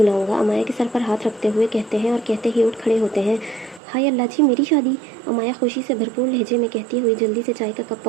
अमाया के सर पर हाथ रखते हुए कहते हैं, और कहते ही उठ खड़े होते हैं। हाय अल्लाह जी, मेरी शादी! अमाया खुशी से भरपूर लहजे में कहती हुई जल्दी से चाय का कप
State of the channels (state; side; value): drops out; left; at 3.8 s